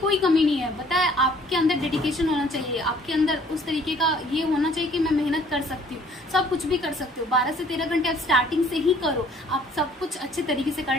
कमी नहीं है। पता है, आपके अंदर डेडिकेशन होना चाहिए, आपके अंदर उस तरीके का ये होना चाहिए कि मैं मेहनत कर सकती हूँ। सब कुछ भी कर सकते हो। 12 से 13 घंटे आप स्टार्टिंग से ही करो, आप सब कुछ अच्छे तरीके से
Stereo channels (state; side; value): normal; both; correlation 0.57